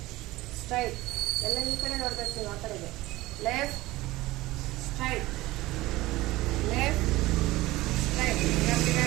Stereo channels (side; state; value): left; quieter; 18.6 dB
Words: straight. ಎಲ್ಲ ಈ ಕಡೆ ನೋಡ್ಬೇಕು ನೀವು. ಆ ಕಡೆಗೆ left straight left straight